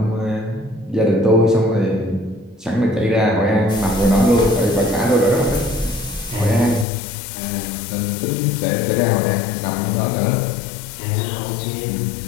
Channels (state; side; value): drops out; right; at 6.9 s